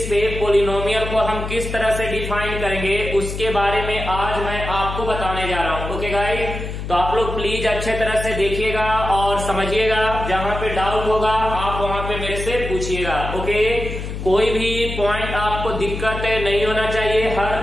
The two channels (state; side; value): noise; left; hum, 6 dB below the sound